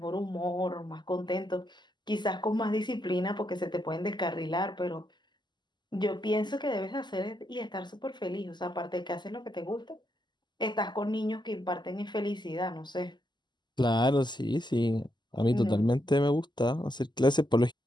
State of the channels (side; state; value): right; late; 0.21 ms